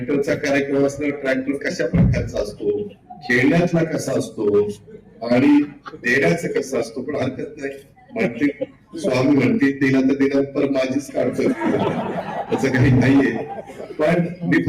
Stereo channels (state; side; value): identical; both; correlation 1.00